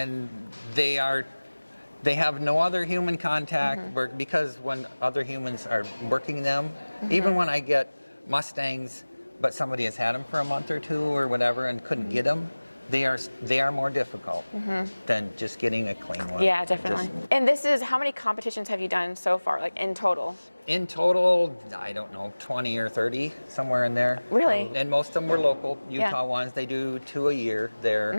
they have no other human contact because when other humans are working them, even when I get Mustangs, but somebody has had them for a month or two or whatever and couldn't get them, they are more difficult than just getting a clean one. Yeah, definitely. And this is, how many competitions have you done so far, like in total? In total, I don't know, 20 or 30, somewhere in there. Really? And most of them were local, Utah ones. They do 2 a year there.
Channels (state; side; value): inverted; both; correlation -1.00